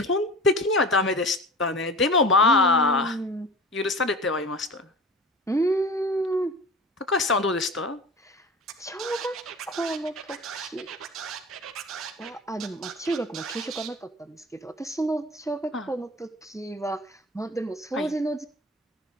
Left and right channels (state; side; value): normal; both; correlation 0.36